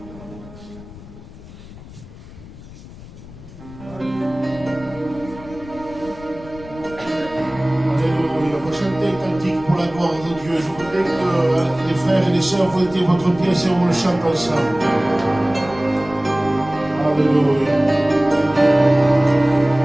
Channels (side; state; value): left; noise; rumble, 17 dB below the sound